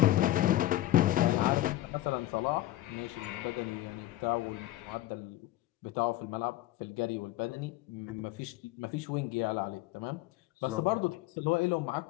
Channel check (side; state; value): right; quieter; 15.4 dB